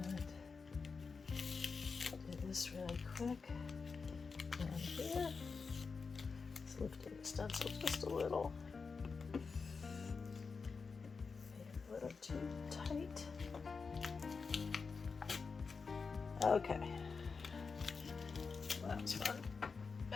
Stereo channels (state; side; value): quieter; right; 4.9 dB